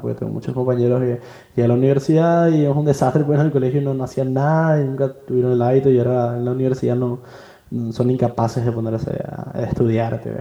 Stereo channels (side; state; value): both; identical; correlation 1.00